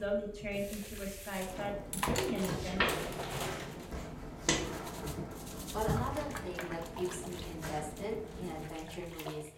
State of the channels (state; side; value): identical; both; correlation 1.00